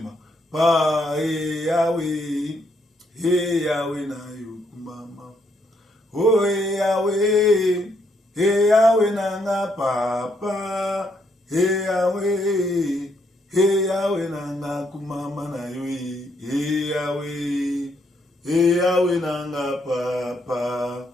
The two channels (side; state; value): both; normal; correlation 0.74